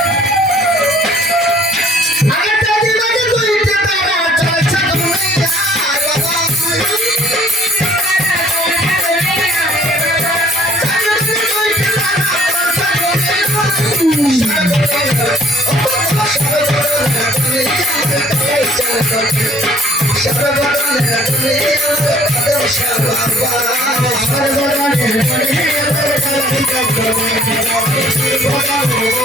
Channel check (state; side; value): normal; both; correlation 0.57